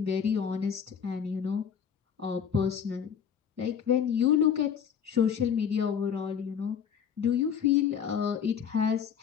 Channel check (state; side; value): quieter; right; 7.8 dB